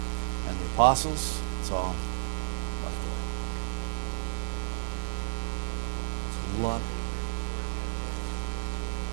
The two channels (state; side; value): silent; left; 55 dB below the other